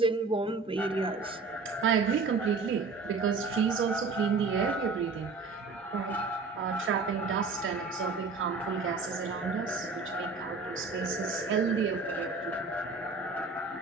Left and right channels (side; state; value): left; quieter; 4.3 dB